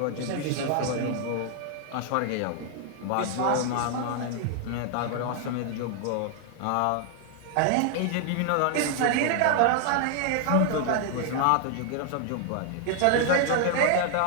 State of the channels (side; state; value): both; different; correlation 0.00